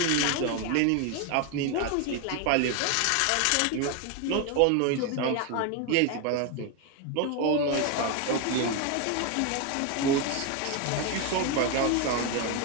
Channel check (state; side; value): different; both; correlation 0.01